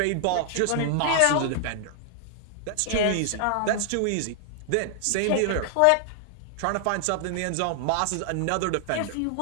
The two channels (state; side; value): different; both; correlation 0.00